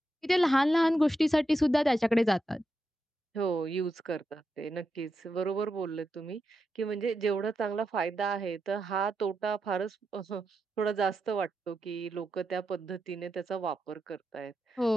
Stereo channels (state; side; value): normal; both; correlation 0.86